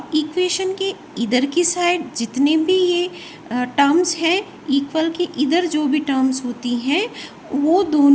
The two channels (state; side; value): identical; both; correlation 1.00